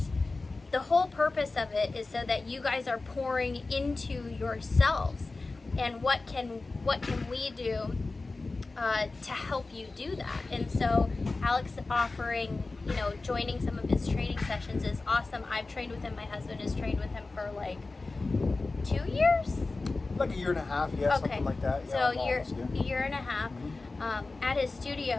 the whole purpose of it is so that you guys are pouring into yourselves, and what can we do to help you do that. And so Alex offering, joining some of his training sessions is awesome. I've trained with him. My husband has trained with him for like 2 years, like a year and a half, yeah, okay, something like that. So Yeah, a year and a half at his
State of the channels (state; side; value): quieter; right; 3.5 dB